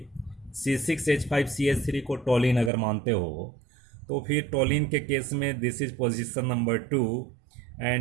C6H5CH3 को टोलिन अगर मानते हो, तो फिर टोलिन के केस में this is position number 2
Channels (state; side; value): drops out; left; at 2.7 s